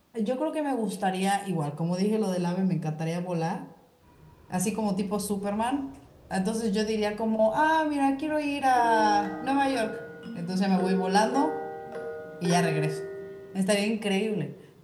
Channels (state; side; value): identical; both; correlation 1.00